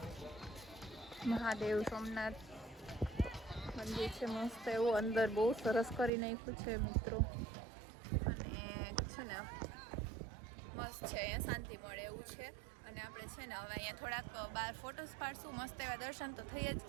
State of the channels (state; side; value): drops out; left; at 6.1 s